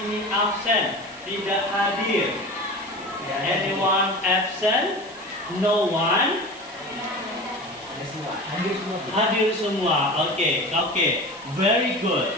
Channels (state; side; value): noise; right; hiss, 23 dB below the sound